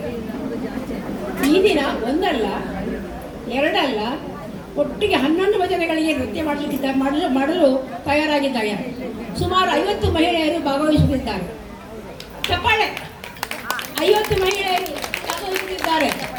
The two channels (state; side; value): identical; both; correlation 1.00